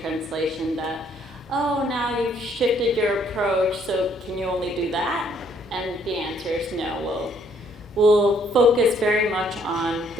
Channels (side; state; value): both; normal; correlation 0.66